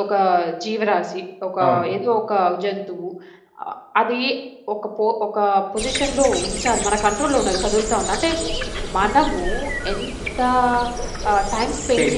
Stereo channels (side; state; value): both; identical; correlation 1.00